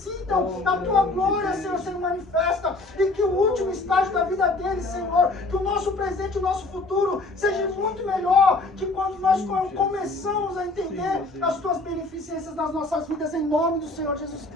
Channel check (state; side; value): quieter; right; 3.1 dB